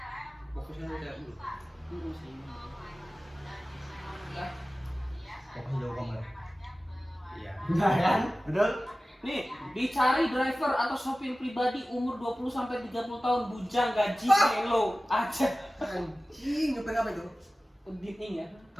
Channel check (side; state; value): both; normal; correlation 0.96